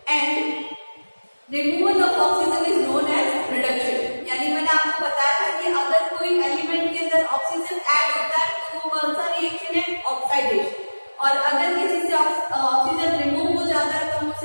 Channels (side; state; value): both; inverted; correlation -1.00